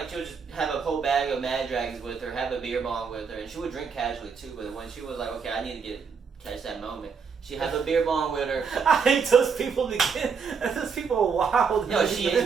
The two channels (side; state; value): left; quieter; 5.9 dB